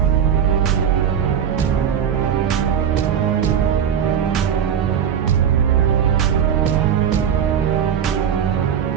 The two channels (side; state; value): left; quieter; 8.4 dB